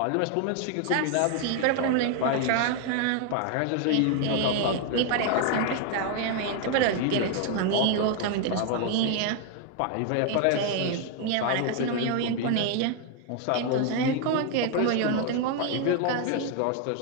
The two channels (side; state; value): both; different; correlation 0.00